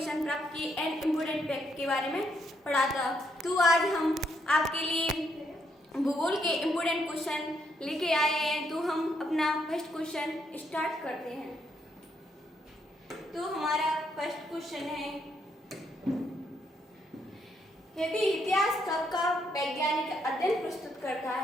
प्राप्त की एंड इम्पोर्टेंट फैक्ट के बारे में पढ़ा था। तो आज हम आपके लिए भूगोल के इम्पोर्टेंट क्वेश्चन लेके आए हैं। तो हम अपना फर्स्ट क्वेश्चन स्टार्ट करते हैं। तो हमारा फर्स्ट क्वेश्चन है, यदि इतिहास कब का वैज्ञानिक अध्ययन प्रस्तुत करता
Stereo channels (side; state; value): both; normal; correlation 0.75